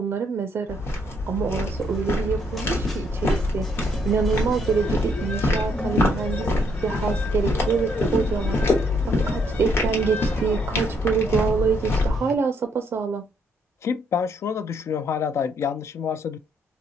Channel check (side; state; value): both; normal; correlation 0.71